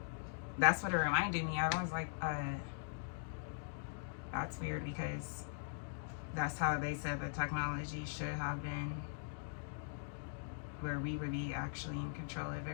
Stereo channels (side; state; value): right; silent; digital silence